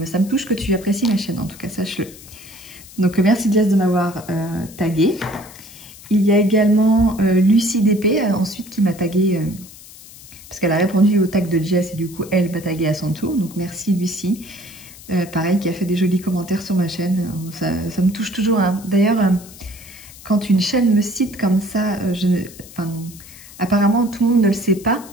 touche que tu apprécies ma chaîne, en tout cas, sache-le. Donc merci Jess de m'avoir tagué. Il y a également Lucie DP ensuite qui m'a tagué parce qu'elle a répondu au tag de Jess et du coup elle m'a tagué à son tour. Donc merci Lucie, pareil, qui a fait des jolis commentaires sur ma chaîne. Ça me touche toujours, hein. D'ailleurs, quand une chaîne me cite comme ça, apparemment tout le monde ne le sait pas,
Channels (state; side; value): noise; left; hiss, 19 dB below the sound